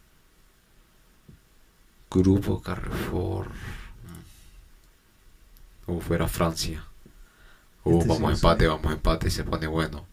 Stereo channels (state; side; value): identical; both; correlation 1.00